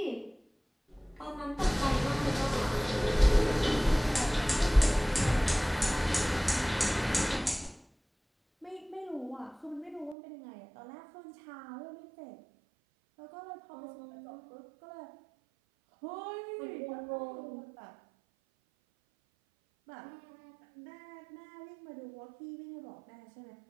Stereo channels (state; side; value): drops out; left; at 10.2 s